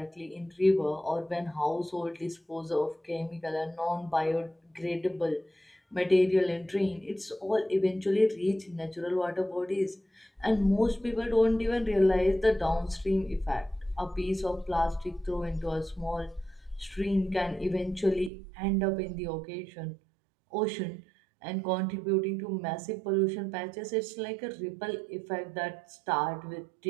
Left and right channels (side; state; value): left; drops out; at 18.3 s